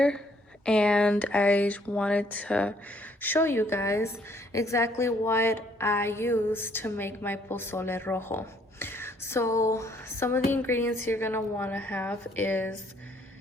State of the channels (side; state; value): both; normal; correlation 0.65